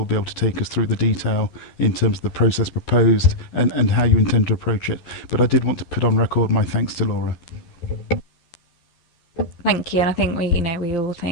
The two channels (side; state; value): right; late; 12 ms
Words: be able to take us through the detail in terms of the process proposed and how you intend to approach it, but I did want to put on record my thanks to Laura. Thank you, and I think we all